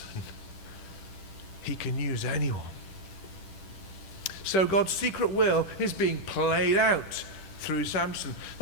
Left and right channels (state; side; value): late; right; 10 ms